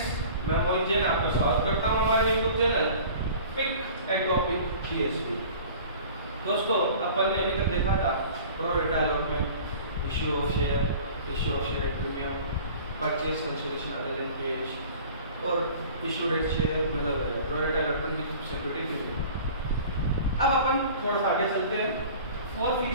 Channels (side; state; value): both; inverted; correlation -0.44